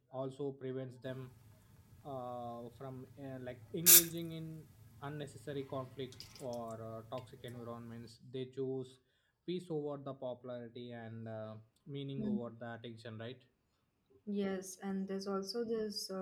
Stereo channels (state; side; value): identical; both; correlation 1.00